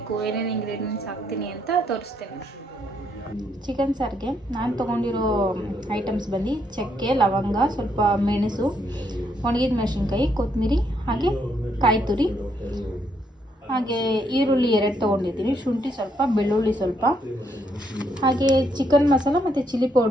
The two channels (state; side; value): normal; both; correlation 0.74